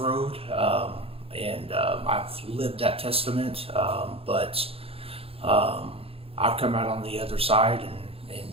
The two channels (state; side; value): late; left; 0.28 ms